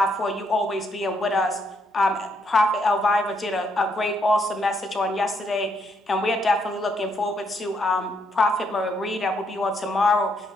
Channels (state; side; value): normal; both; correlation 0.74